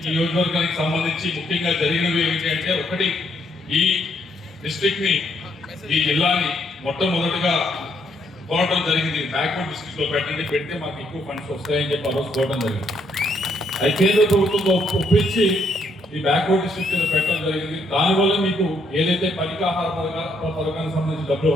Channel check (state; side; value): normal; both; correlation 0.73